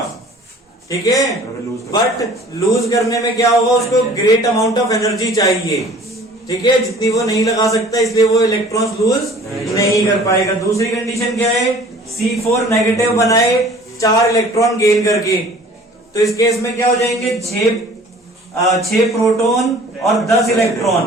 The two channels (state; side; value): normal; both; correlation 0.49